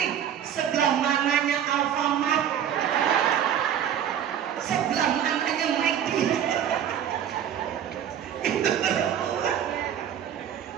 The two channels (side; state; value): left; quieter; 9.6 dB